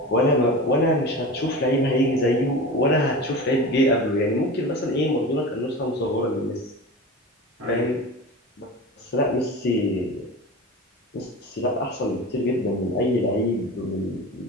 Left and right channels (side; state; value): both; normal; correlation 0.31